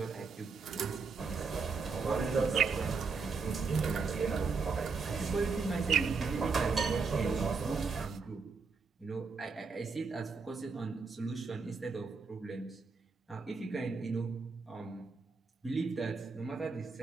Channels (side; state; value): left; quieter; 4.7 dB